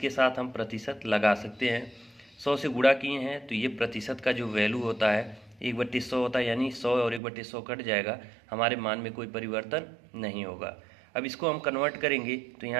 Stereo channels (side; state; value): left; drops out; at 7.2 s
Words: साथ हम प्रतिशत लगा सकते हैं। 100 से गुणा किए हैं तो ये प्रतिशत का जो वैल्यू होता है 1/100 होता है, यानी 100 और 1/100 कट जाएगा, हमारे मान में कोई परिवर्तन नहीं होगा। अब इसको हम कन्वर्ट करेंगे तो